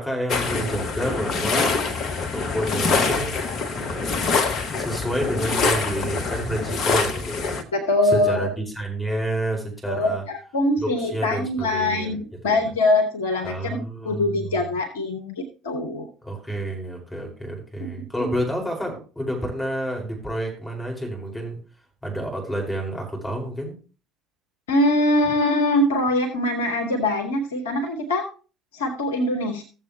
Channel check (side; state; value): both; normal; correlation 0.40